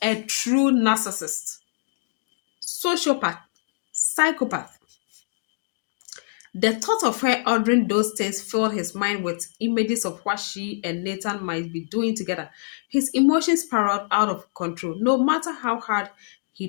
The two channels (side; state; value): right; silent; digital silence